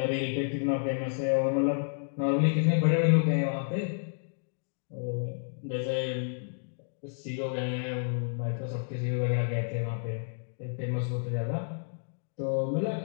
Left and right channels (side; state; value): right; silent; digital silence